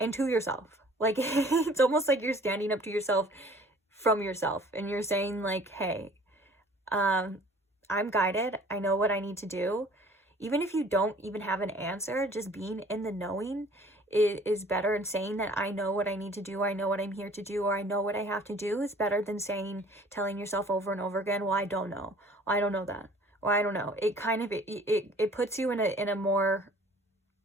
to yourself. Like, it's almost like you're standing up to yourself from yourself, and you're saying like, hey, I I'm guided. I know what I need to do. Even if you don't even have an answer, just being in the knowing is better, and saying that I know what I need to do, I know what I'm here to do, or I know what I have to do is better than telling yourself over and over again, well, I don't know. Well, I don't know that. Well, I don't know. It kind of, it puts you in a more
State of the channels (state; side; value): normal; both; correlation 0.51